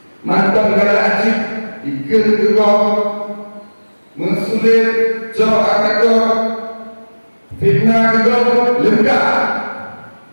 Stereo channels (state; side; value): inverted; both; correlation -1.00